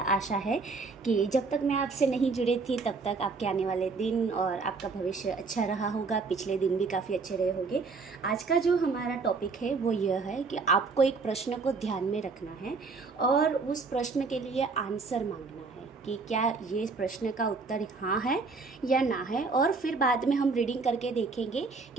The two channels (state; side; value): quieter; left; 4.3 dB